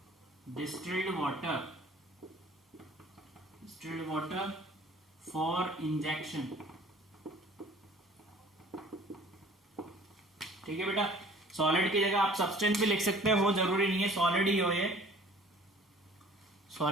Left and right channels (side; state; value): both; normal; correlation 0.50